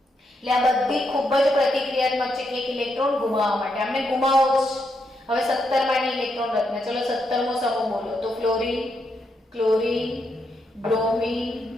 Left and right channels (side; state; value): both; normal; correlation 0.80